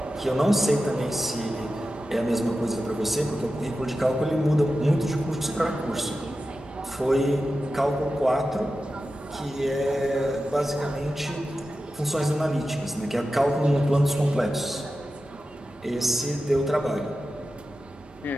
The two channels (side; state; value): both; normal; correlation 0.92